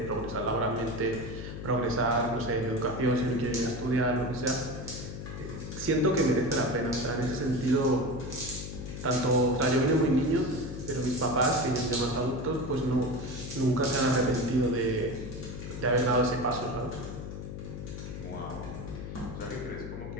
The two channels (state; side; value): noise; left; hum, 8 dB below the sound